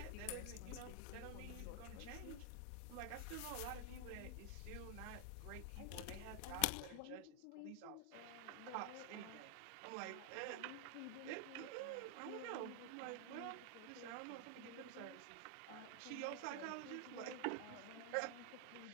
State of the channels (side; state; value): both; different; correlation 0.00